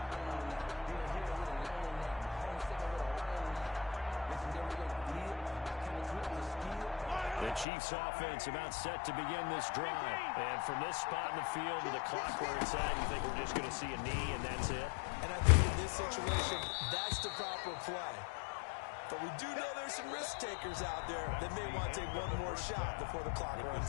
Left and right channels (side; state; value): right; drops out; at 7.7 s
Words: The Chiefs offense about set to begin this drive. And from this spot in the field to the clock where it's at, you think we're just going to see a knee and that's it? And I think in this situation, that's the proper play. But we do know there's some risk takers out there that may want to take one more shot before the clock